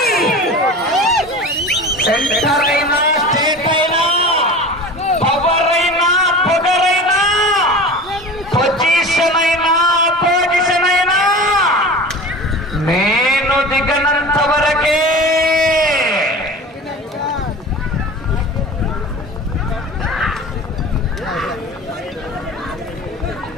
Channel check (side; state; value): both; normal; correlation 0.35